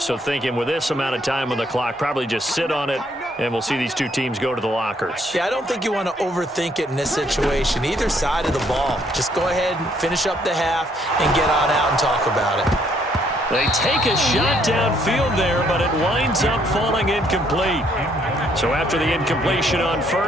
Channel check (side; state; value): both; normal; correlation 0.68